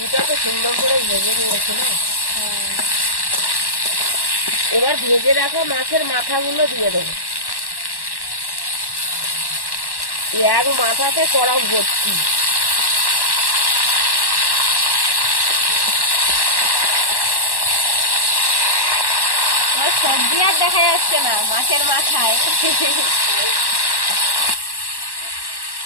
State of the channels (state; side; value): late; right; 1.1 ms